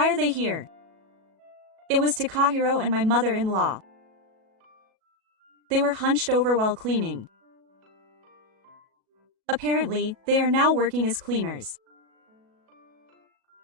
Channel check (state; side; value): late; left; 37 ms